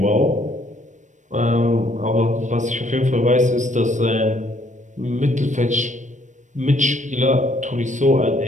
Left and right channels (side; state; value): left; late; 0.35 ms